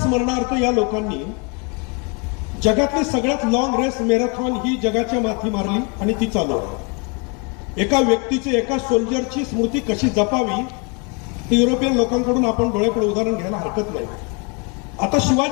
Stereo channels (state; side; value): quieter; right; 31.9 dB